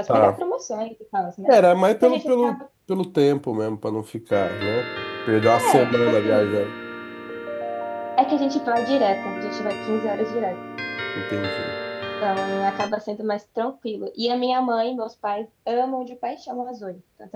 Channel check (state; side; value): identical; both; correlation 1.00